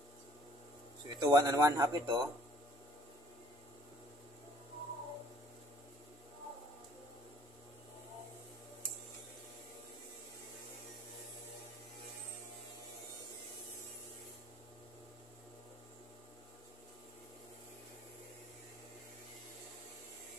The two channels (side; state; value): both; normal; correlation 0.57